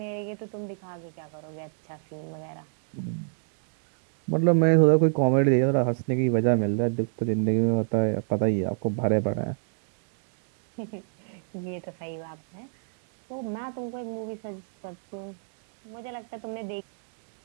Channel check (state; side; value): silent; left; digital silence